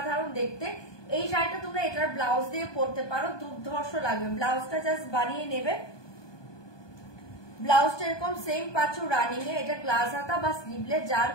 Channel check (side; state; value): right; late; 1.2 ms